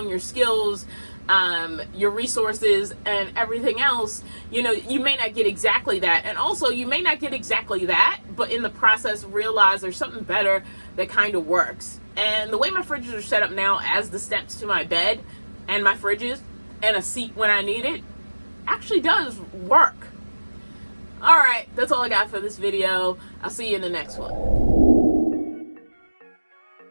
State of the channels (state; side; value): inverted; both; correlation -1.00